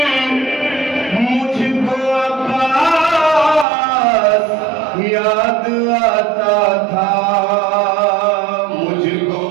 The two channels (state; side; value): drops out; left; at 3.7 s